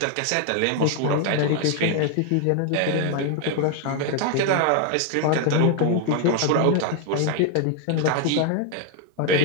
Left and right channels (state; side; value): different; both; correlation 0.00